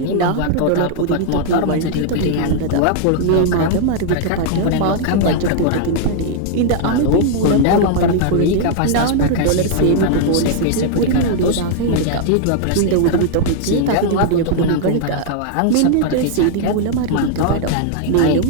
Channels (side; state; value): both; different; correlation 0.00